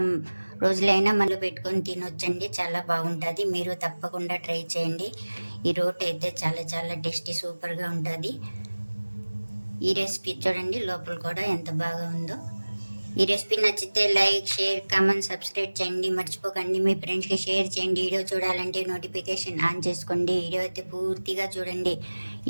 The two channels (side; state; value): both; inverted; correlation -1.00